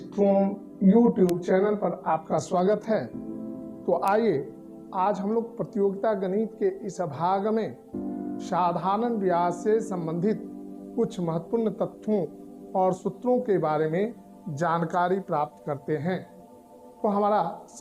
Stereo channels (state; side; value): identical; both; correlation 1.00